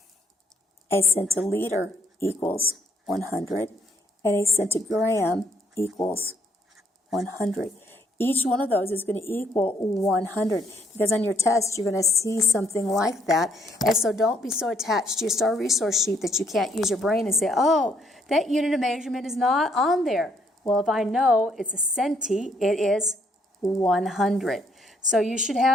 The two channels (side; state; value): both; normal; correlation 0.69